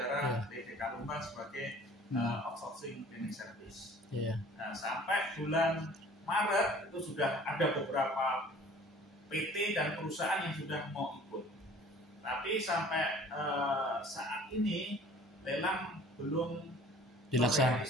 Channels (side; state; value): both; normal; correlation 0.49